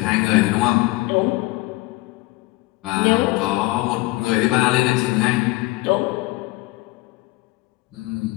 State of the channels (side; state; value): right; quieter; 20.2 dB